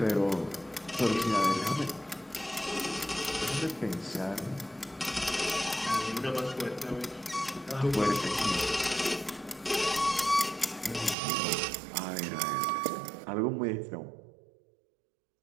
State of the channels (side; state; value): left; drops out; at 11.2 s